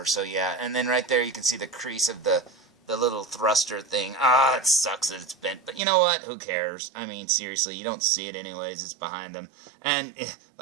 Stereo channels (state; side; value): drops out; left; at 5.8 s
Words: So, yeah. And then right there you can see the crease of the little thruster thing. It sucks that it's bent. But you know what? Who cares? I mean, seriously, you don't see it anyways. It's behind him. And,